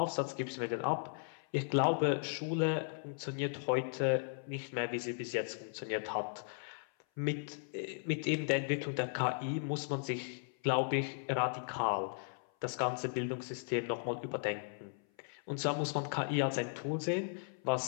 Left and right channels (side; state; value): right; silent; 53 dB below the other